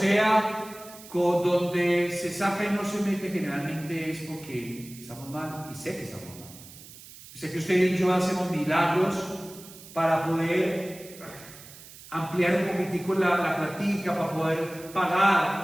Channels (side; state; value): right; noise; hiss, 18 dB below the sound